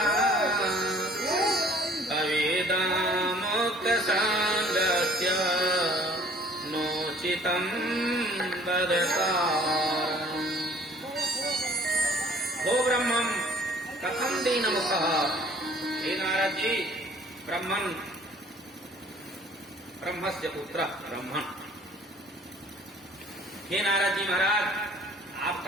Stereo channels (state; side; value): normal; both; correlation 0.54